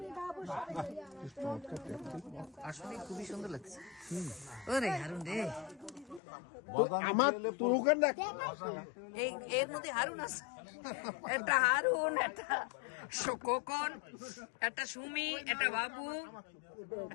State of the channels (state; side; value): drops out; right; at 6.2 s